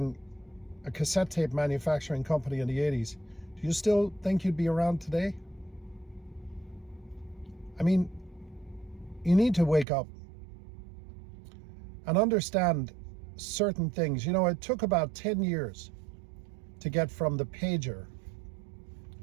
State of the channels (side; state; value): left; drops out; at 9.9 s